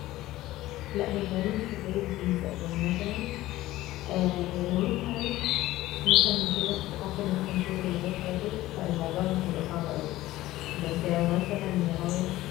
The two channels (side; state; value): right; quieter; 16.4 dB